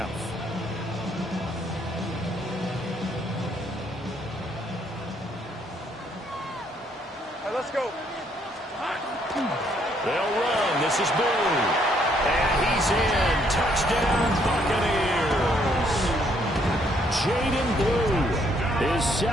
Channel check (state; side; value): normal; both; correlation 0.69